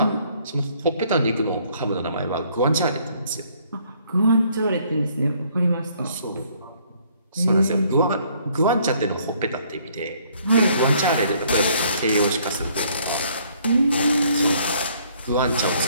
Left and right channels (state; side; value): inverted; both; correlation -0.64